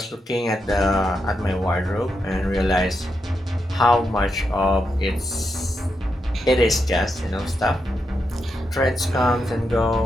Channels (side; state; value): both; normal; correlation 0.84